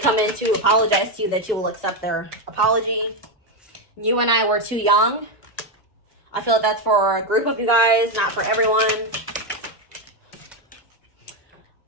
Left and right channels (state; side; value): normal; both; correlation 0.07